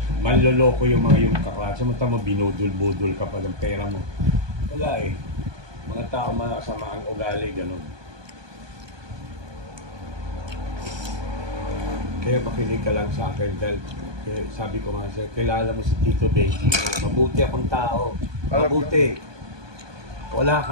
Manloloko yung mga yung kaklase. Samanta mo, binudul-budul ka pa ng pera mo. Wala eh. Mga tao masama ang ugali, gano'n. Kaya makinig ka lang sa akin dahil sabi ko nga sa'yo, kilala mo si Tito Benji. Mabuti akong tao. Mabuti. Wala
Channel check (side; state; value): left; late; 1.2 ms